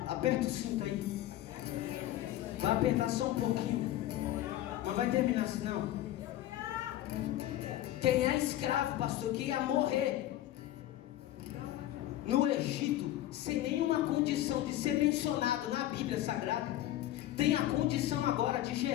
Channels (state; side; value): quieter; right; 14.0 dB